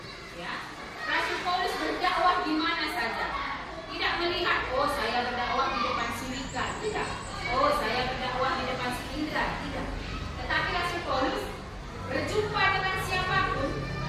Ya, Rasul Paulus berdakwah di mana saja. Tidak melihat, oh saya berdakwah di depan Sulika, tidak. Oh saya berdakwah di depan Indra, tidak. Tetapi Rasul Paulus berjumpa dengan siapapun,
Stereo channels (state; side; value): identical; both; correlation 1.00